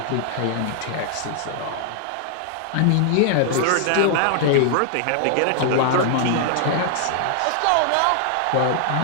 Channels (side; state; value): both; different; correlation 0.00